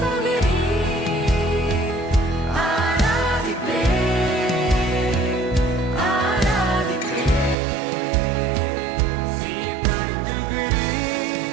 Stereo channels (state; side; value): drops out; left; at 7.6 s